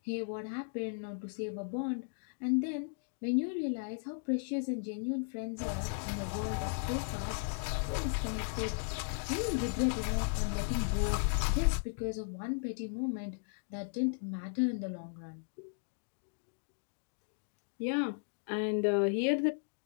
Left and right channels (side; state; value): right; silent; digital silence